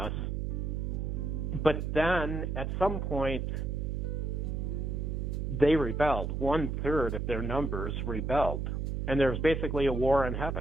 But then at some point, they rebelled. 1/3 of their numbers rebelled. And there was basically a war in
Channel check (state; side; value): noise; right; hum, 1 dB below the sound